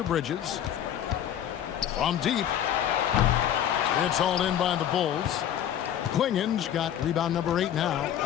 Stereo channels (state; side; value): quieter; right; 10.3 dB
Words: Bridges. From deep. It's hauled in by the Bulls. Klingen's got rebound number 8 now